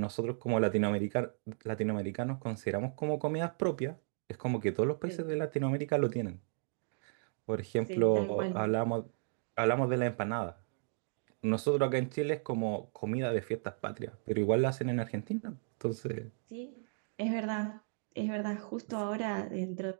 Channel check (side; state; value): left; silent; digital silence